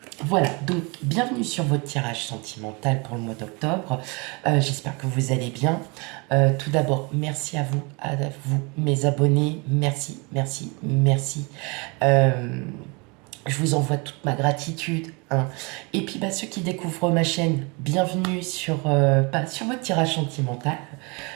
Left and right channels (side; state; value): left; quieter; 29.7 dB